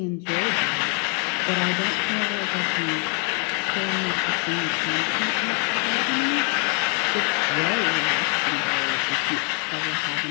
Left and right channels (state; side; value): quieter; right; 37.9 dB